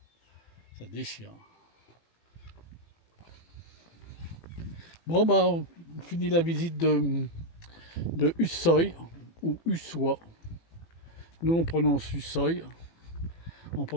Ça déchire. Bon, bah, on finit la visite de Hussoy, ou Ussois. Nous, on prononce Hussoy, en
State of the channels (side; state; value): right; late; 18 ms